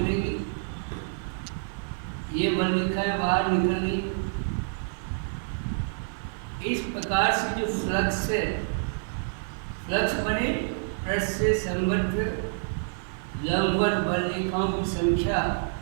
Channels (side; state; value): left; silent; digital silence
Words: ये बल रेखाएं बाहर निकलेगी। इस प्रकार से जो फ्लक्स है, फ्लक्स बने पृष्ठ से संबद्ध लंबवत बल रेखाओं की संख्या,